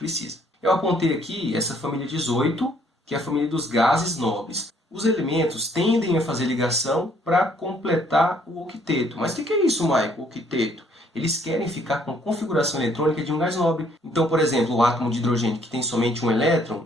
Eu apontei aqui essa família 18, que é a família dos gases nobres. Os elementos tendem a fazer ligação para completar o octeto. Mas o que é isso, Michael, octeto? Eles querem ficar com a configuração eletrônica de um gás nobre. Então, por exemplo, o átomo de hidrogênio que tem somente um elétron,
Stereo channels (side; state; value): both; normal; correlation 0.64